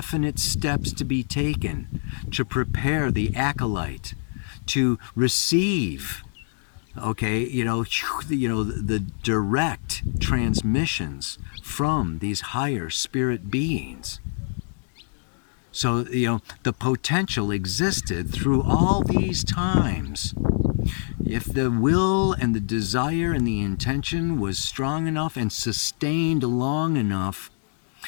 steps to be taken to prepare the acolyte to receive, okay, the direct transmissions from these higher spirit beings. So, the potential existed through all these times. If the will and the desire and the intention was strong enough and sustained long enough,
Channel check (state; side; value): silent; right; digital silence